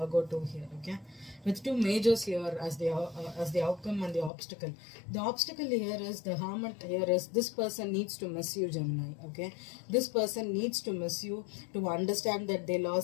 2 here. Okay, with two majors here as the outcome and the obstacle. The obstacle here is the Hermit. Here is, this person needs to miss you, Gemini. Okay, this person needs to miss you, to understand that they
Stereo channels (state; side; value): drops out; right; at 4.3 s